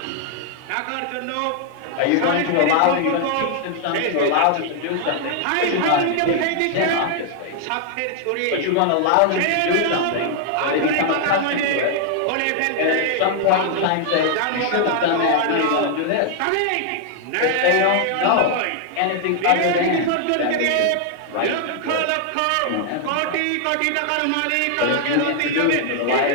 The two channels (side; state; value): both; different; correlation 0.00